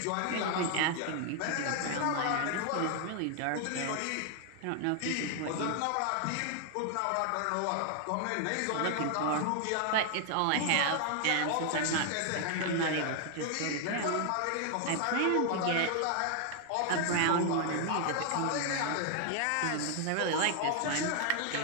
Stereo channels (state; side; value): different; both; correlation 0.00